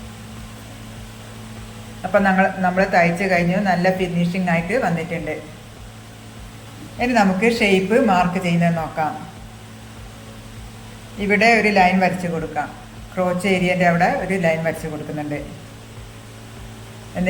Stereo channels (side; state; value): both; identical; correlation 1.00